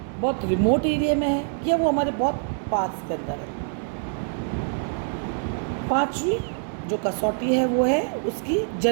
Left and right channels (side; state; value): left; silent; 62 dB below the other